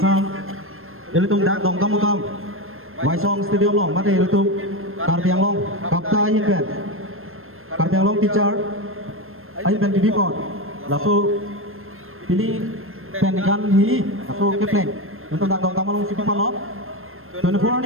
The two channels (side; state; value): left; late; 0.61 ms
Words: Liton Dak Dongkamukam Waisong Stadium Long Mati Liton Karbiang Long Kapta Yinpen Karbiang Long Teacher Ayben TV Port Lalu ini pendidikan ini atau keplen untuk nak dong kamu siapa lo 24